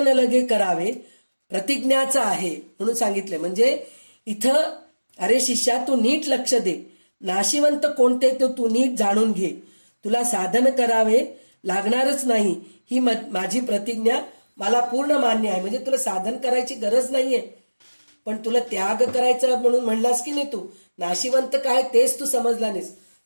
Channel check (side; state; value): both; inverted; correlation -1.00